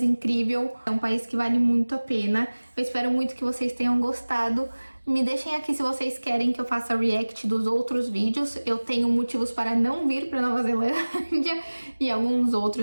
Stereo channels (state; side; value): inverted; both; correlation -1.00